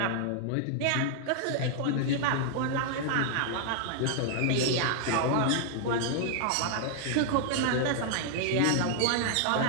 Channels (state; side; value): different; both; correlation 0.00